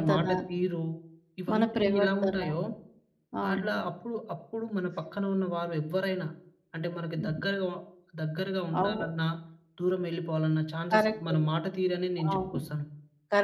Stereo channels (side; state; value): both; identical; correlation 1.00